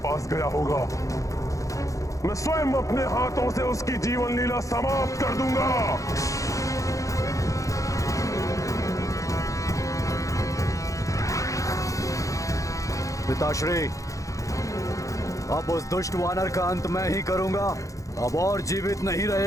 पास गया होगा। मैं स्वयं अपने हाथों से उसकी जीवन लीला समाप्त कर दूंगा। पिताश्री, अब उस दुष्ट वानर का अंत मैं ही करूंगा। अब और जीवित नहीं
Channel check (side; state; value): right; late; 0.16 ms